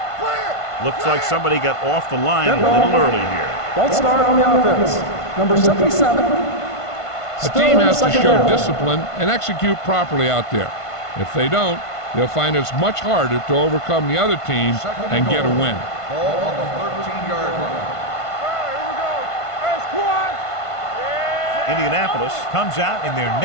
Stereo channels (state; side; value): late; right; 1.5 ms